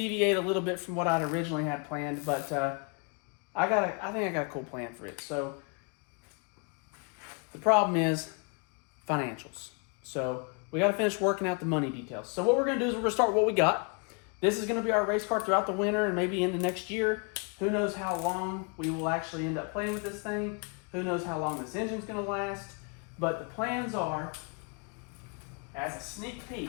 a little bit from what I'd originally had planned, but I think I got a cool plan for it. So the problem is financials. So we got to finish working out the money details. So what we're going to do is we're going to start with what we got. This is going to be our race car throughout the winter and maybe into next year. Who knows how long we will actually end up playing with this thing. Who knows how long this engine's going to last. But the plans are, as a sneak peek,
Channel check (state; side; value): quieter; right; 36.0 dB